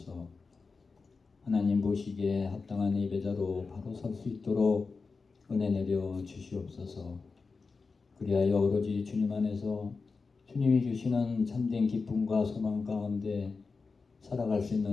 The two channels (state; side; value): quieter; right; 4.4 dB